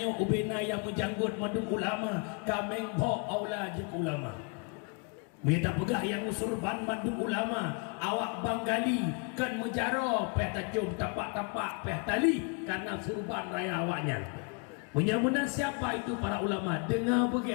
ubena yang menjanggut madu ulama, kameng bo aula je ulama. Minta pegah yang usurban madu ulama, awak banggali kan menjaro peh tajum tapak-tapak peh tali karena surban raya awaknya. Menyamuna siapa itu para ulama? Dengar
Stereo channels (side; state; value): right; quieter; 36.0 dB